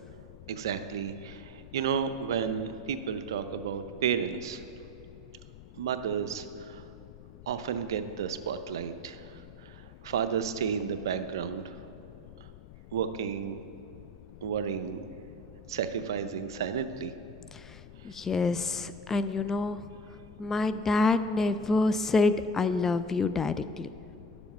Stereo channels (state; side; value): noise; left; rumble, 17 dB below the sound